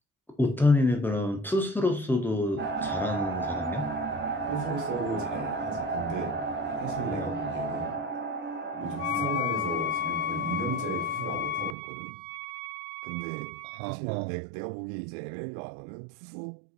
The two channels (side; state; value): left; drops out; at 11.8 s